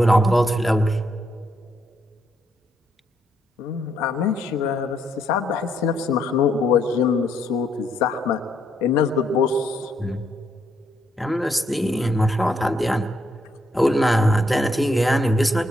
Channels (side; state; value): both; normal; correlation 0.74